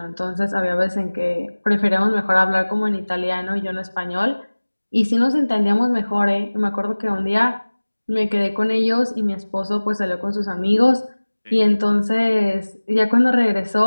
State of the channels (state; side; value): inverted; both; correlation -1.00